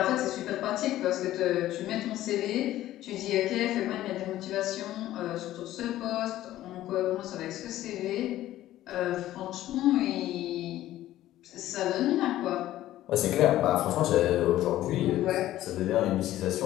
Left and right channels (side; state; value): right; quieter; 14.2 dB